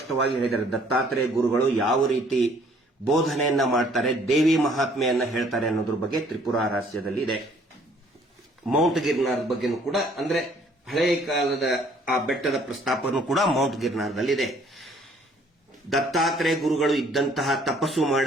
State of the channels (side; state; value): both; normal; correlation 0.60